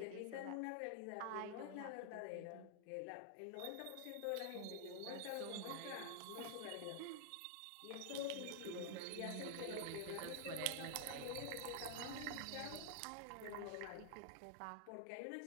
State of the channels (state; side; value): different; both; correlation 0.00